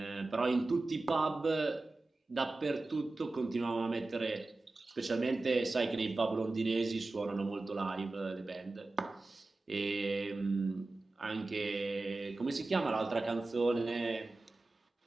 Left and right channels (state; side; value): quieter; left; 3.2 dB